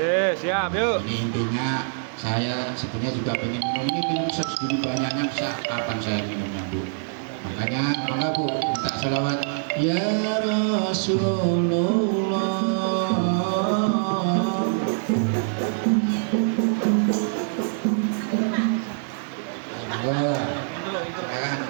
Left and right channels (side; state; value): left; silent; digital silence